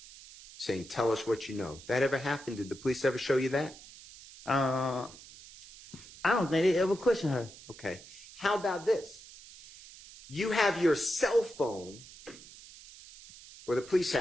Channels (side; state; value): right; noise; hiss, 18 dB below the sound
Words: saying, tell us what you know? That ever happened? Did the police ever show you that? I don't think they ever questioned her. Okay. How about this? You have your cell phone, or the police